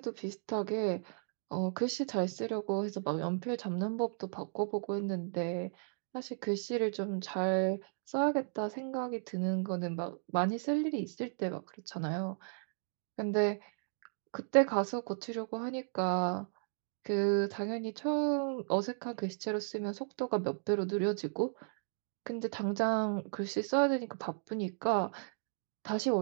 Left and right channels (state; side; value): silent; left; digital silence